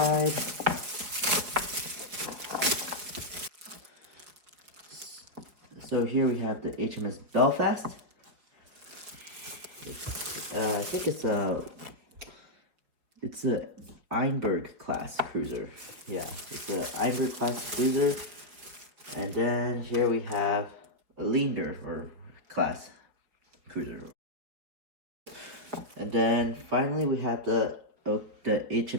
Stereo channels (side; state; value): left; late; 4.9 ms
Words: So here we have the HMS Belfast. I think it's a Einberg class cruiser. Yeah, it's a Einberg class cruiser. And then here we have a Leander or class cruiser. And then finally we have the